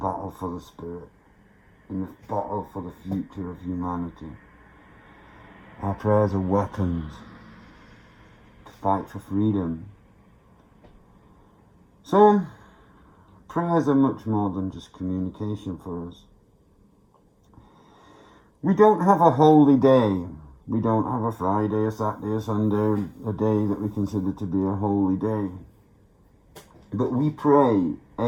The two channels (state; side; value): identical; both; correlation 1.00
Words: for the spirit, in the battle for the future of humanity. Our prayers are weapons to fight for freedom. So, prayers are much more than just communication for us. We don't have a holy day. We don't have a Friday, a Saturday, a Sunday, a day that we consider to be a holy day. But we pray